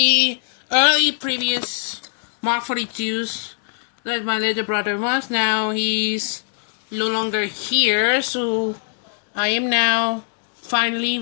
early previous Mark 42s that my little brother was, now he's no longer here, so I am now finally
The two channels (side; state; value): right; silent; 65 dB below the other